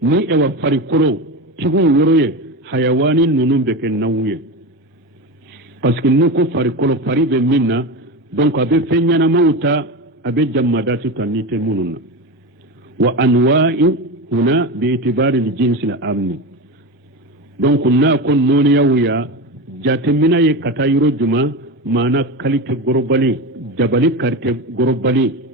ni ewa farikolo tigiw yɔrɔ ye hayawani ninnu bɛ kɛ naw ye parce que n'u ko farikolo fari bɛ min na donc a bɛ fɛn ɲɛnamaw ta a bɛ jamadati ta ni tɛ minnu na wa anwa'i huna bi itibari li jinsi la amni donc n'a ko nɔniyaw ya jatemina ye ka taa yɔrɔ juma maana kalite gorobali dabali karte gorobali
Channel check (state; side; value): normal; both; correlation 0.21